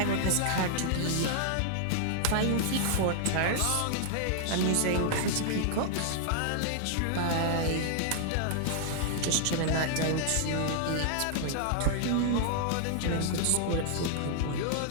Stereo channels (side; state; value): both; different; correlation -0.01